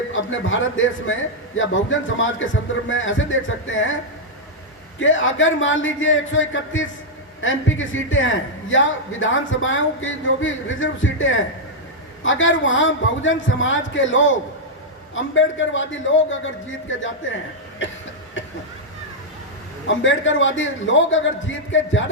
अपने भारत देश में या बहुजन समाज के संदर्भ में ऐसे देख सकते हैं कि अगर मान लीजिए 131 एमपी की सीटें हैं या विधानसभाओं की जो भी रिजर्व सीटें हैं, अगर वहाँ बहुजन समाज के लोग, अम्बेडकरवादी लोग अगर जीत के जाते हैं अम्बेडकरवादी लोग अगर जीत के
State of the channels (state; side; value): normal; both; correlation -0.04